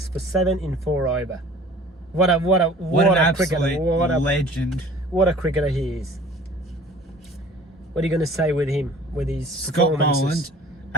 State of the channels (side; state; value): both; normal; correlation 0.48